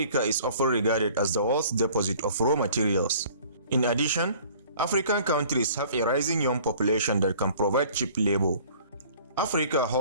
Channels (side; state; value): both; inverted; correlation -0.51